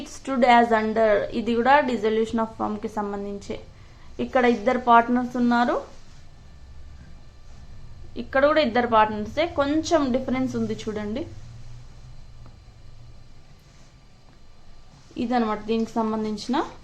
stood as under. ఇది కూడా డిజల్యూషన్ ఆఫ్ ఫర్మ్ కి సంబంధించి. ఇక్కడ 2 పార్ట్నర్స్ ఉన్నారు, ఇక్కడ కూడా 2 పార్ట్నర్సే, కొంచెం డిఫరెన్స్ ఉంది చూడండి. ఇదనమాట దీనికి సంబంధించిన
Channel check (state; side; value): identical; both; correlation 1.00